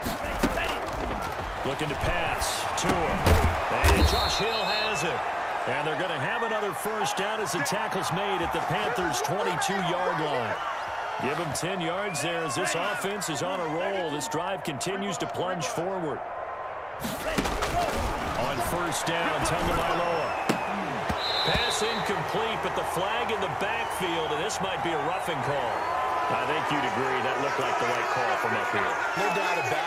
Looking to pass to him. And Josh Hill has it. And they're going to have another first down as the tackle's made at the Panthers' 22-yard line. Give them 10 yards there as this offense is on a roll. This drive continues to plunge forward. On 1st down, Tagovailoa. Pass incomplete, but the flag in the backfield, and this might be a roughing call. I think you'd agree that looked like the right call from up here. No doubt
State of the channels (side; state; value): both; identical; correlation 1.00